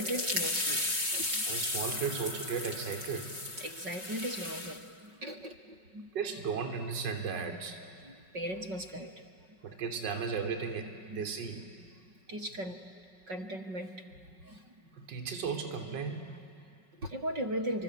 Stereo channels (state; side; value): late; left; 5.4 ms